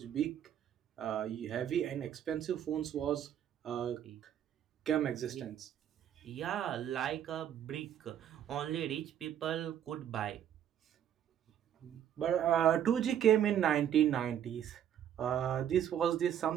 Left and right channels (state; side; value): quieter; left; 9.9 dB